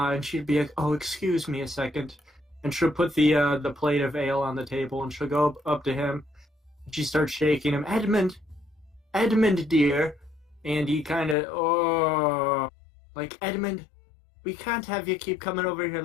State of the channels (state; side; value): drops out; right; at 11.4 s